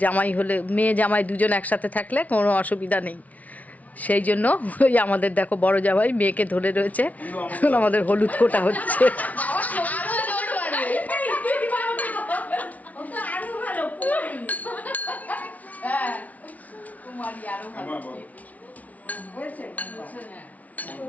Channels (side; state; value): right; late; 0.071 ms